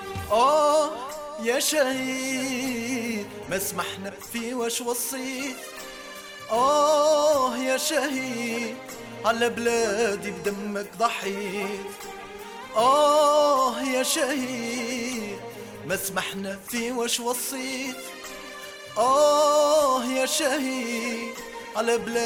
يا شهيد ما سمحنا في واش وصيت. يا شهيد على بلادي بدمك ضحيت. يا شهيد ما سمحنا في واش وصيت. يا شهيد على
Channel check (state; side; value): identical; both; correlation 1.00